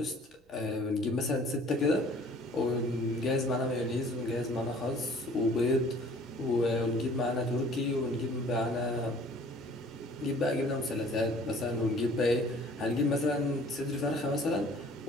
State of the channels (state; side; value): normal; both; correlation 0.53